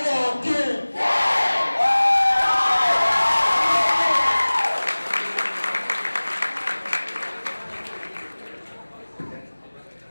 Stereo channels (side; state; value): both; inverted; correlation -1.00